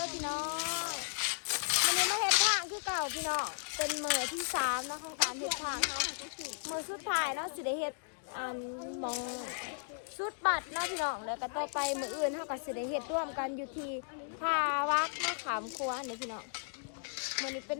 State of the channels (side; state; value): right; silent; digital silence